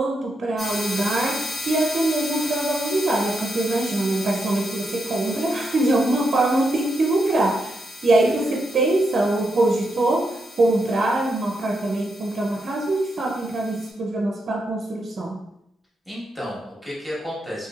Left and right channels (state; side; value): normal; both; correlation 0.83